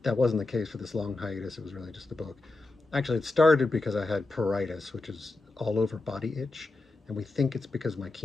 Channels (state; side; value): quieter; right; 3.1 dB